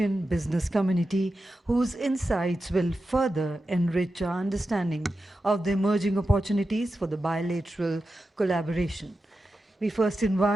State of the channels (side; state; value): both; normal; correlation 0.91